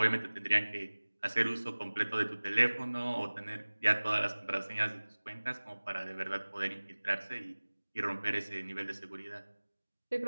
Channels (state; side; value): inverted; both; correlation -1.00